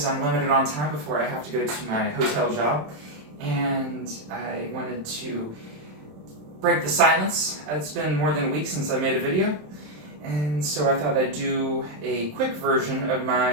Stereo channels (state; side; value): late; left; 27 ms